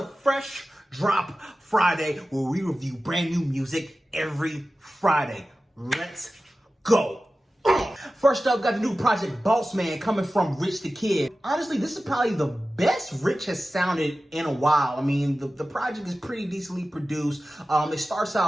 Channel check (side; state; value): both; normal; correlation 0.95